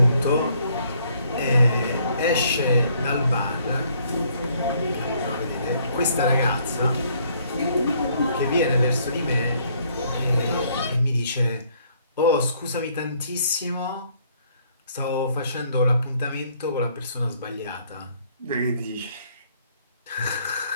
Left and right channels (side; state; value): both; inverted; correlation -0.65